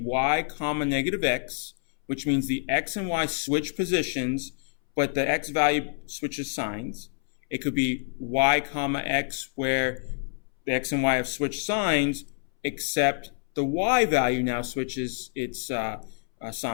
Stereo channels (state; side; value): silent; right; 60 dB below the other